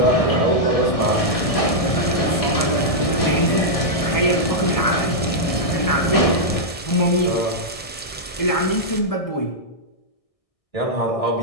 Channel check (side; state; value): right; late; 1.6 ms